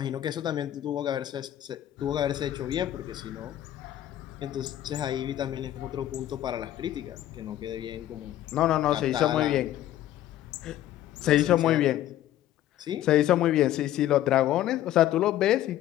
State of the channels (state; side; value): quieter; right; 12.9 dB